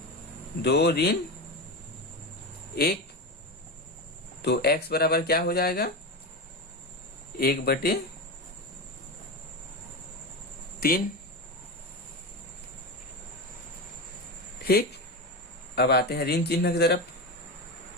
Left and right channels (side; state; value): both; normal; correlation 0.19